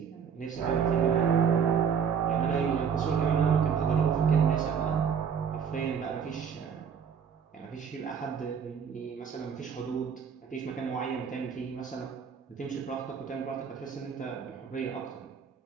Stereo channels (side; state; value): left; quieter; 7.1 dB